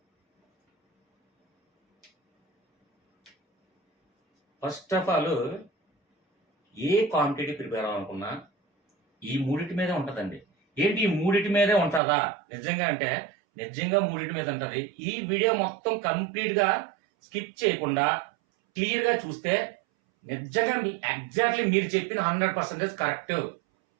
ఫస్ట్ ఆఫ్ ఆల్ ఏ కాంపిటేటివ్ ప్రిపేర్ అవ్వాలనుకున్నా ఈ మూడిటి మీదే ఉంటదండి. ఏంటి ఈ మూడిటి మీదే ఉంటదా? నిజంగా అంటే నిజంగా మూడిటి మీద ఉంటది. ఈ వీడియో మొత్తం కంప్లీట్‌గా స్కిప్ చేయకుండా క్లియర్‌గా చూస్తే నిజంగా ఎగ్జాక్ట్‌లీ మీరు చెప్పిన 100% కరెక్ట్.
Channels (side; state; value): left; drops out; at 12.0 s